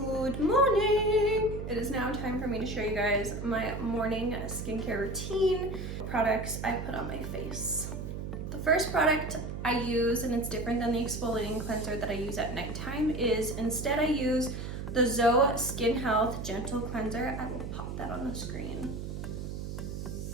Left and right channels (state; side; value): noise; right; hum, 6 dB below the sound